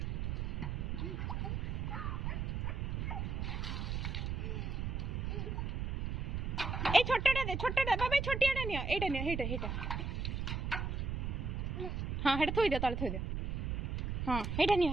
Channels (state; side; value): noise; right; rumble, 1 dB below the sound